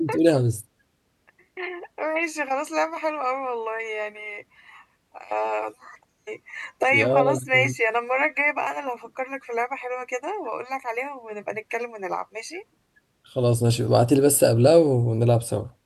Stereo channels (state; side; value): identical; both; correlation 1.00